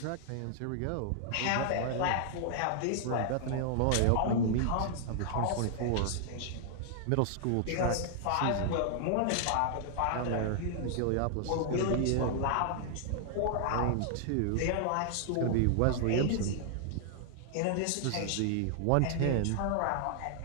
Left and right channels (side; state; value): both; different; correlation -0.01